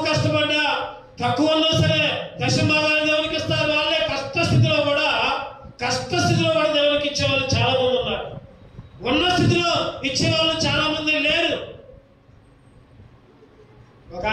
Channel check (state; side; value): identical; both; correlation 1.00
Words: కష్టపడ్డా, తక్కువ ఉన్నా సరే దశభాగాలు దేవునికి ఇస్తారు. వాళ్ళే కష్టస్థితిలో కూడా దేవునికి ఇచ్చేవాళ్ళు చాలా మంది ఉన్నారు. ఉన్న స్థితిలో ఇచ్చేవాళ్ళు చాలా మంది లేరు. ఒక